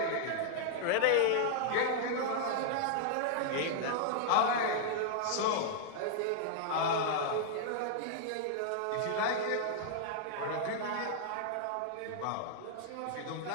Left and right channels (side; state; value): both; different; correlation -0.01